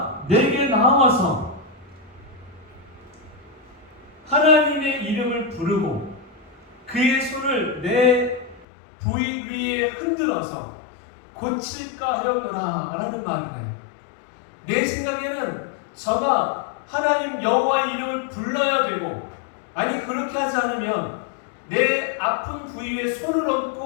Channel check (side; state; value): right; drops out; at 8.7 s